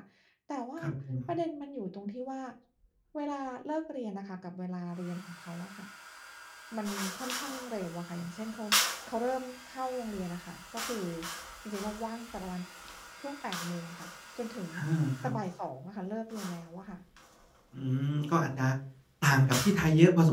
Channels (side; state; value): both; identical; correlation 1.00